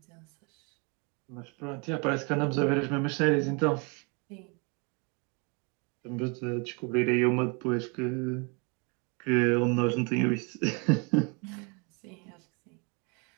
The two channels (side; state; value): left; quieter; 32.7 dB